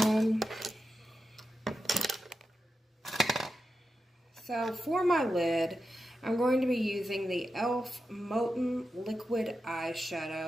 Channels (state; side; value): normal; both; correlation 0.90